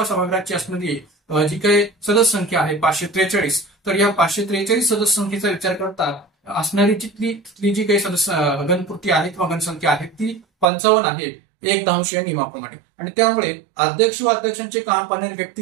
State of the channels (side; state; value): left; drops out; at 10.7 s